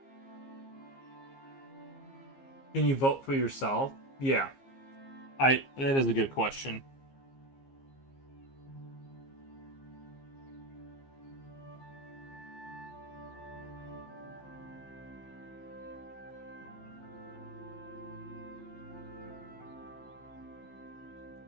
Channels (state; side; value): late; right; 15 ms